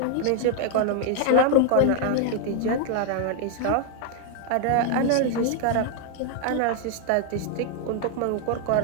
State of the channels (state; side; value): different; both; correlation 0.00